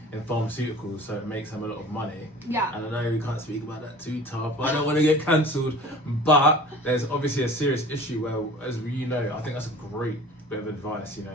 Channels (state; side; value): normal; both; correlation 0.43